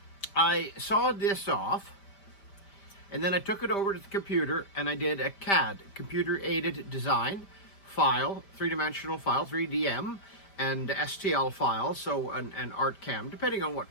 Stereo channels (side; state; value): right; late; 5.1 ms